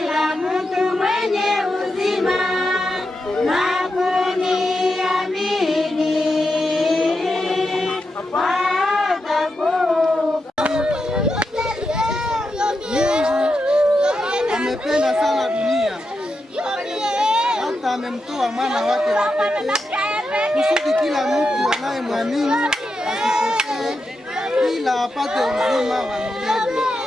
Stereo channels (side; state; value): both; normal; correlation 0.87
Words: na kuniamini amependa sana dunia hata amemtoa mwana wake wa pekee kusudi kila mtu anayemwamini asipotee ila apate uzima wa milele.